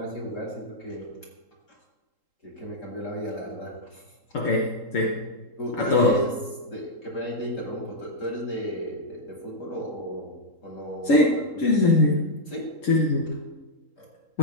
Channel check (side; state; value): right; late; 3.8 ms